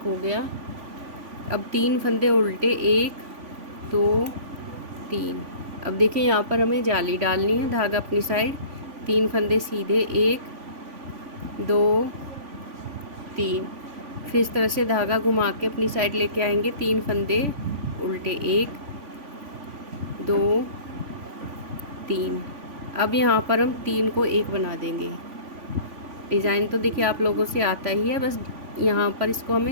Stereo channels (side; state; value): left; late; 3.5 ms